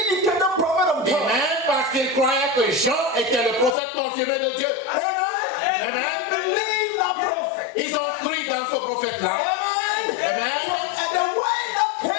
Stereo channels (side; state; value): right; drops out; at 3.8 s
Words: prophet of Et God. même parce qu'ils croyaient que Jean était le prophète confirmé de Dieu. Amen. Amen. They believed that prophet. Ils ont cru dans ce prophète-là. Amen. Amen. And the word that